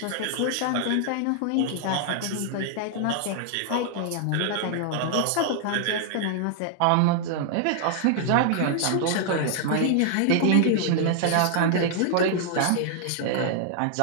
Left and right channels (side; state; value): both; different; correlation 0.00